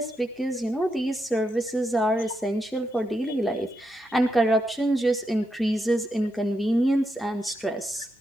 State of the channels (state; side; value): normal; both; correlation 0.83